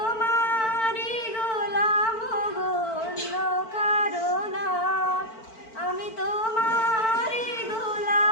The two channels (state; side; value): late; right; 4.5 ms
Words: গোলাম গো, অন্য কারো না। আমি তোমারি